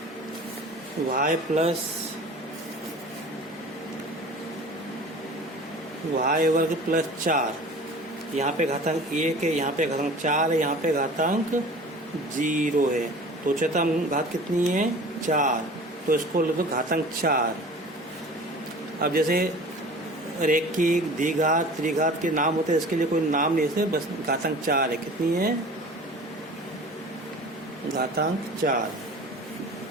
y प्लस y वर्ग प्लस 4, यहाँ पे घातांक 1 है, यहाँ पे घातांक 4 है, यहाँ पे घातांक 0 है, तो उच्चतम घात कितनी है 4, तो इसको लिख दो घातांक 4। अब जैसे रैखिक द्विघात त्रिघात के नाम होते हैं, इसके लिए कोई नाम नहीं है, बस घातांक 4 है। कितनी है घातांक 4।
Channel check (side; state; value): both; normal; correlation 0.41